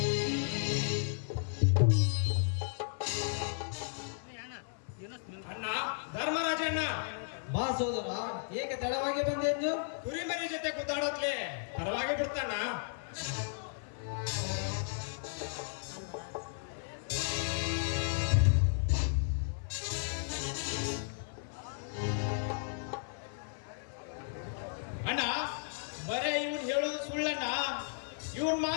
ಅಣ್ಣ ಧರ್ಮರಾಜಣ್ಣ, ಬಾ ಸೋದರ, ಏಕೆ ತಡವಾಗಿ ಬಂದೆ ಎಂದು? ಕುರಿಮರಿ ಜೊತೆ ಕುದ್ದಾಡತ್ಲೆ ಪರವಾಗಿ ಬಿಡ್ತಾನ. ಅಣ್ಣ, ಬರೇ ಇವನ್ ಹೇಳೋದು ಸುಳ್ಳಣ್ಣ. ಇವನ್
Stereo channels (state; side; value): silent; right; 55 dB below the other